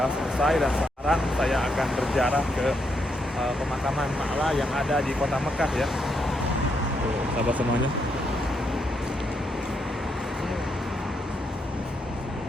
selesai. Dan sekarang saya akan berziarah ke pemakaman Ma'la yang ada di kota Mekah ya. Tuh sahabat semuanya.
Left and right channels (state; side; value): normal; both; correlation 0.79